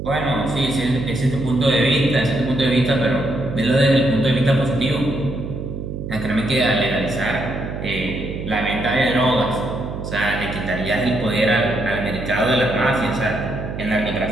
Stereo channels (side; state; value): right; noise; hum, 6 dB below the sound